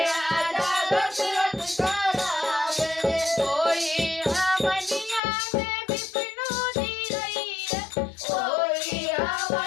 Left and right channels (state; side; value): drops out; right; at 5.2 s